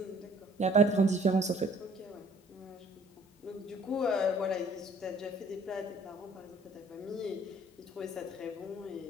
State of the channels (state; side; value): normal; both; correlation 0.57